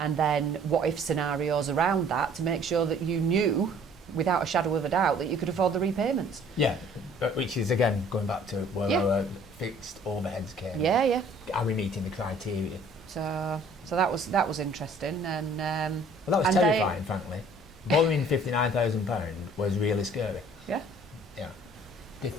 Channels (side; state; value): both; normal; correlation 0.55